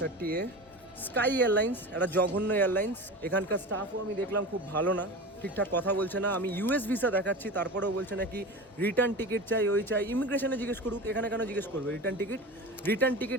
30A। Sky airlines একটা জঘন্য এয়ারলাইন্স। এখানকার স্টাফও আমি দেখলাম খুব ভালো না, ঠিকঠাক কথা বলছে না। আমি ইউএস ভিসা দেখাচ্ছি, তারপরেও বলছে নাকি রিটার্ন টিকিট চাই, ওই চাই। ইমিগ্রেশনে জিজ্ঞেস করুক, এখানে কেন জিজ্ঞেস করবে return ticket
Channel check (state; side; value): normal; both; correlation 0.29